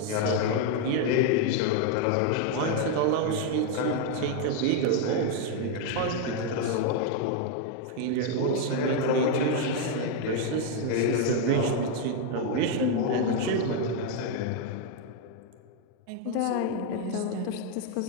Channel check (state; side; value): different; both; correlation 0.01